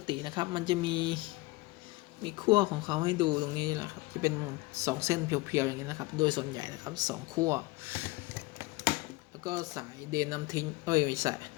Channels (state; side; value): quieter; right; 21.9 dB